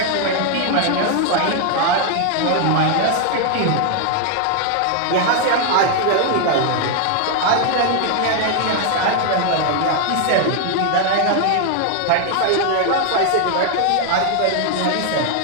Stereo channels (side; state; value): both; different; correlation 0.00